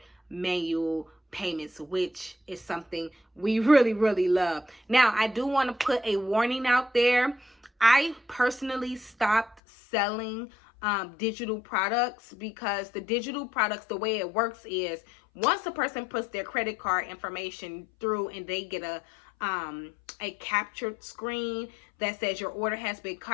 manual payments, which is something we really, really love. Now, I do want to put a warning out there. I personally stopped selling digital products, because the digital products, the way it works is once a person puts their credit card information through and they get a captured screen that says your order has been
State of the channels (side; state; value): right; drops out; at 9.6 s